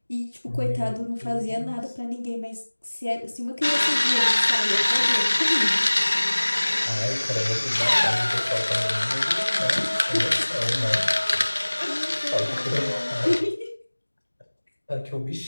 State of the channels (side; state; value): both; inverted; correlation -1.00